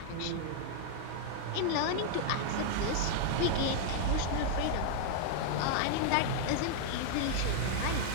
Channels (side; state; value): both; different; correlation -0.01